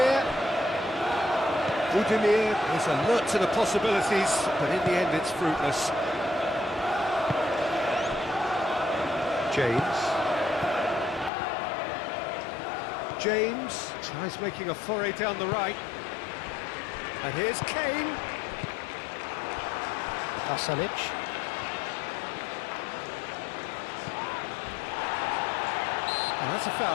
Budimir is alert to the possibilities, but in the end it's fruitless. James tries making a foray down the right. And here's Kane. Pasalic. Oh, that's a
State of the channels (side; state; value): right; drops out; at 11.3 s